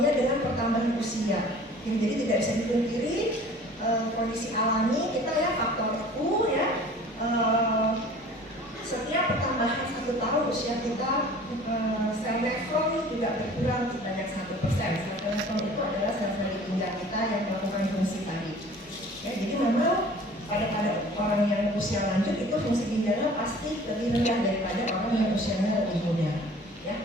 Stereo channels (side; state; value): both; normal; correlation 0.47